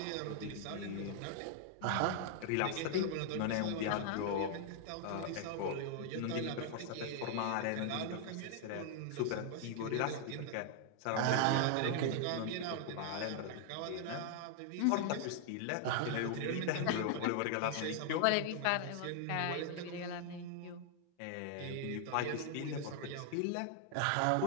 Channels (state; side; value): different; both; correlation 0.00